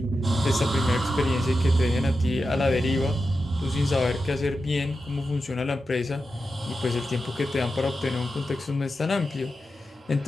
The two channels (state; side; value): normal; both; correlation 0.90